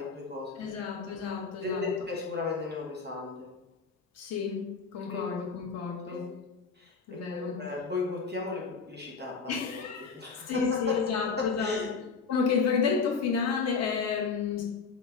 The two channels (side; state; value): right; quieter; 5.2 dB